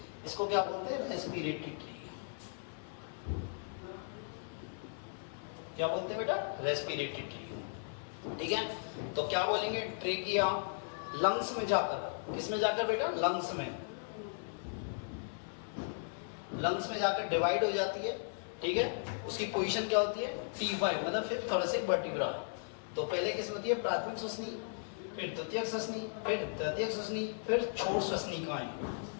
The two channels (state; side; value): silent; right; 53 dB below the other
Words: इसको क्या बोलते हैं? Respiratory tree. क्या बोलते हैं बेटा? Respiratory tree. ठीक है, तो क्या बोलेंगे? ट्रेकिया लंग्स में जाकर, किसमें जाकर बेटा? लंग्स में। लंग्स में जाकर डिवाइड हो जाती है। ठीक है, उसकी पोजीशन क्या होती है? T5 मतलब फिफ्थ थोरेसिक वर्टिब्रा। तो पहले किसमें होती है? प्राथमिक श्वसनी, फिर द्वितीयक श्वसनी, फिर तृतीयक श्वसनी, फिर छोर श्वसनिकाएं।